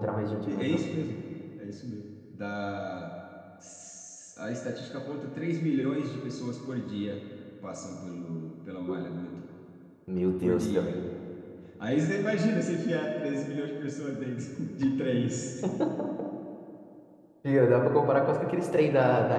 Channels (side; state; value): both; identical; correlation 1.00